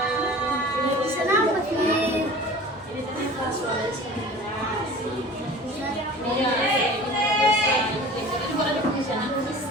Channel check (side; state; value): both; normal; correlation 0.41